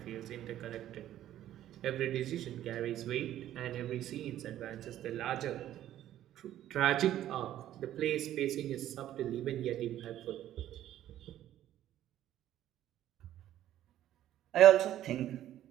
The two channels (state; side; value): quieter; left; 12.4 dB